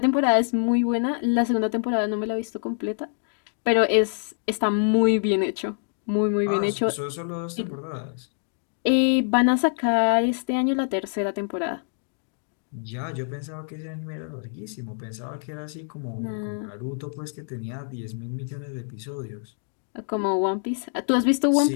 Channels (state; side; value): silent; right; digital silence